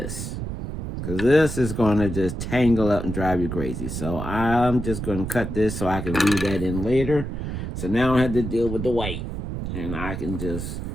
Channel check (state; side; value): noise; right; rumble, 5 dB below the sound